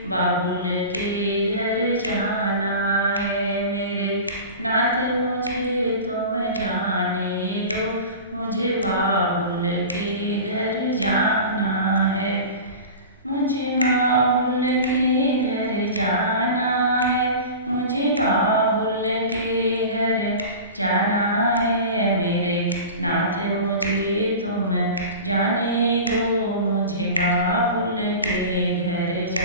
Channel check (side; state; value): both; inverted; correlation -0.34